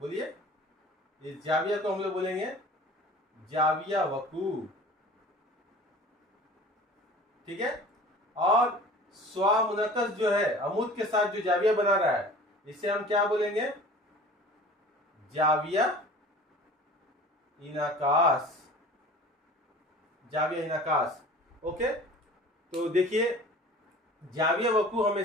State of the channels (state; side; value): normal; both; correlation 0.43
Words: इस जाविया को हम लोग बोलेंगे जाविया वकू। ठीक है। और स्वामुनक्कस जो है, अमूद के साथ जो जाविया बना रहा है, इसे हम क्या बोलेंगे? जाविया इनकास। जाविया इनकास। ओके, तो देखिए जाविया वकू